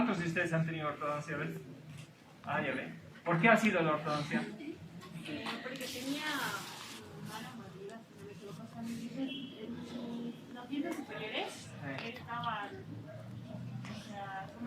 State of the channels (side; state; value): both; identical; correlation 1.00